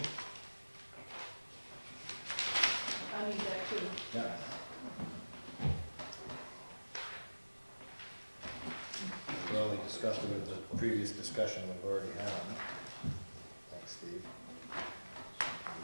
I need that too. Yeah. Well, we discussed it with the previous discussion we've already had. Thanks, Steve.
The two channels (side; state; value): both; inverted; correlation -1.00